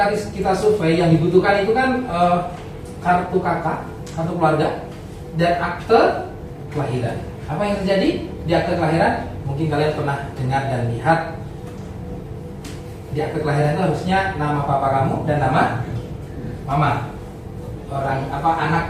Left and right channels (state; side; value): identical; both; correlation 1.00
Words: kita survei yang dibutuhkan itu kan kartu kakak, kartu keluarga, dan akte kelahiran. Apa yang terjadi di akte kelahiran? Mungkin kalian pernah dengar dan lihat. Di akte kelahiran itu harusnya nama papa kamu dan nama mama. Orang anak